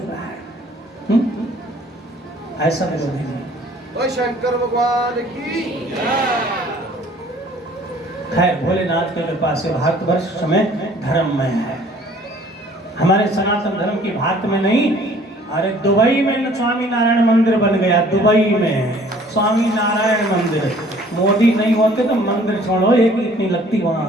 रहा है। ऐसा विरोधी नहीं। शंकर भगवान की। खैर, भोलेनाथ की कृपा से भारतवर्ष में धर्ममय है। हमारे सनातन धर्म की भारत में नहीं, अरे दुबई में स्वामी नारायण मंदिर बन गया। दुबई में स्वामी नारायण मंदिर। मोदी नहीं होते तो मंदिर छोड़ो, एक इतनी लगती वहां।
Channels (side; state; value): both; normal; correlation 0.55